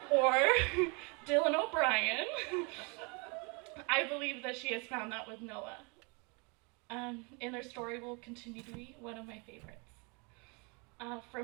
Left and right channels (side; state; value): left; quieter; 31.5 dB